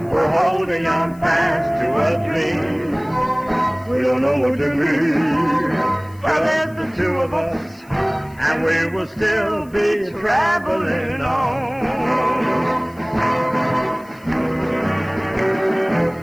we're holding on fast to a dream. We don't know what to be, but there's the two of us, and we will still be traveling on.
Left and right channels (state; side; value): noise; left; hiss, 28 dB below the sound